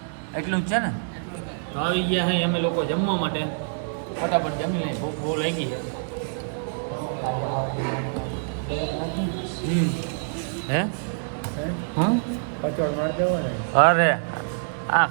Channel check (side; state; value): left; silent; 61 dB below the other